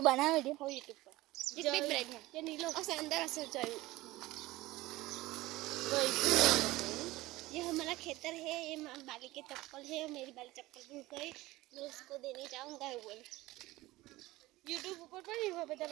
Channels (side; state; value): left; quieter; 18.7 dB